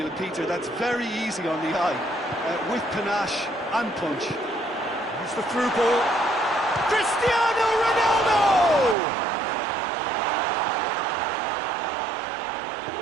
Peter, that's very easy on the eye, with panache and punch. Here's the through ball. Cristiano Ronaldo!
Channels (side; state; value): left; drops out; at 9.0 s